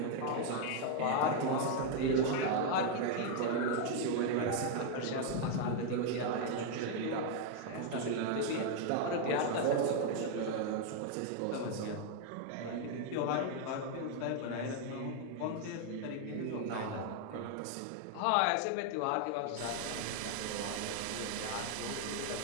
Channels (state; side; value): different; both; correlation 0.00